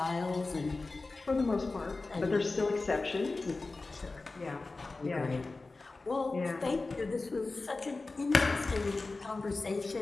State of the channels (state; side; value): quieter; right; 3.5 dB